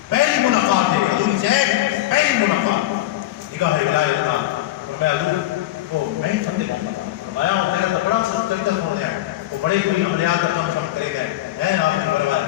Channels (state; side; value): quieter; right; 15.2 dB